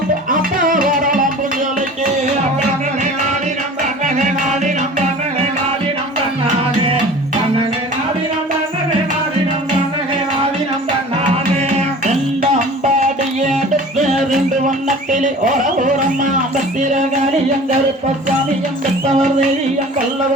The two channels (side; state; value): both; normal; correlation 0.42